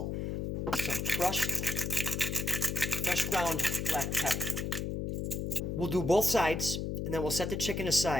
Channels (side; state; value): left; noise; hum, 2 dB below the sound